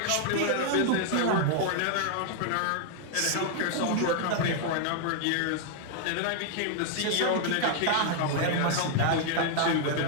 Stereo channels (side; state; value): both; different; correlation 0.00